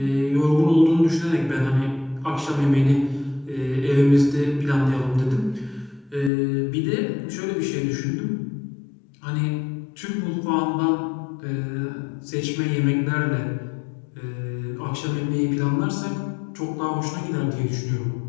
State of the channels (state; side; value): drops out; right; at 6.3 s